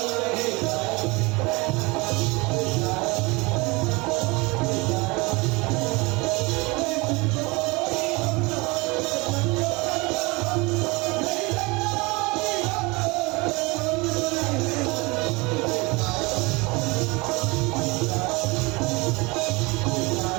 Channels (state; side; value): quieter; left; 25.4 dB